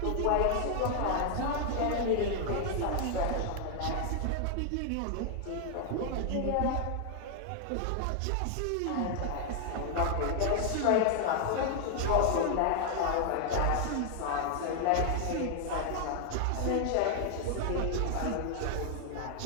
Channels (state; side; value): different; both; correlation 0.00